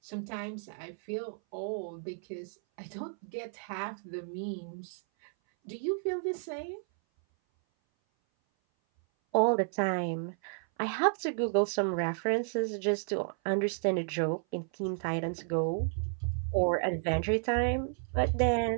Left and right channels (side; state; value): left; silent; 56 dB below the other